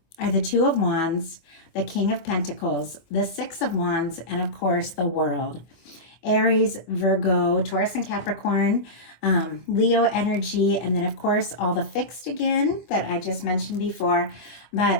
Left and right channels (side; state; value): right; late; 25 ms